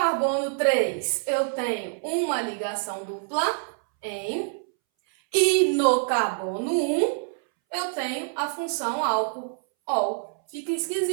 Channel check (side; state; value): left; silent; 61 dB below the other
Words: 3, eu tenho uma ligação dupla, em. E no carbono 1, eu tenho a função álcool, ol. Fica